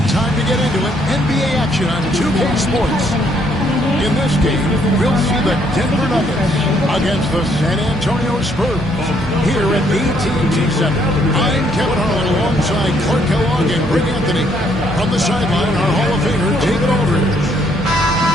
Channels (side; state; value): both; normal; correlation 0.69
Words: Time to get into it. NBA action on 2K Sports. In this game, we'll see the Denver Nuggets against the San Antonio Spurs here at AT&T Center. I'm Kevin Harlan alongside Clark Kellogg and Rick Anthony. From the sideline, our Hall of Famer, David Aldridge.